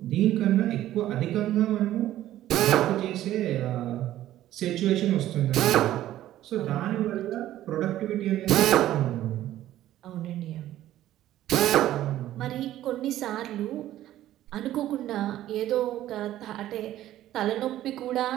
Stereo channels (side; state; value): left; quieter; 13.5 dB